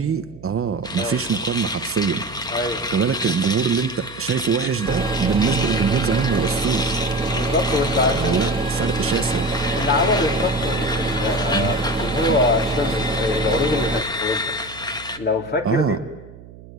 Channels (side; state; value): right; noise; hum, 19 dB below the sound